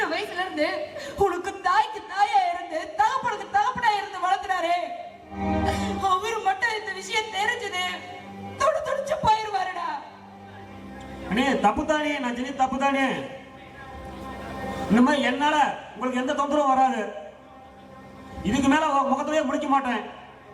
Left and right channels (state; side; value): identical; both; correlation 1.00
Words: வயசுல இருந்து உனக்கு தாய்க்கு தாயா இருந்து தகப்பனுக்கு தகப்பனா இருந்து வளர்த்துனாரு. அவரு மட்டும் இந்த விஷயம் தெரிஞ்சது துடிச்சு போயிருவாருடா. அண்ணே தப்புதானே, நான் செஞ்ச தப்புதானே. இந்த மாதிரி என்னால உங்களுக்கு எந்த தொந்தரவும் வராது. இதுக்கு மேல முகத்திலேயே முடிக்க மாட்டேன்.